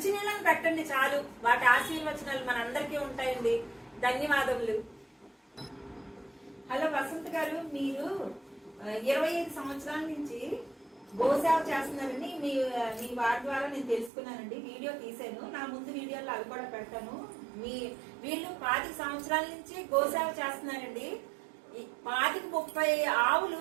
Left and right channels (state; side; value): drops out; left; at 14.1 s